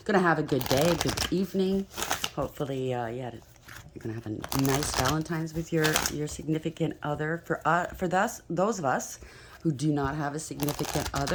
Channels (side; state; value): both; identical; correlation 1.00